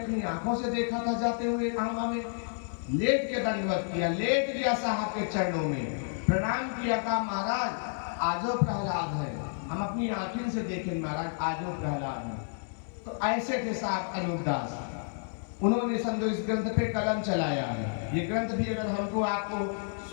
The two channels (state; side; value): silent; right; digital silence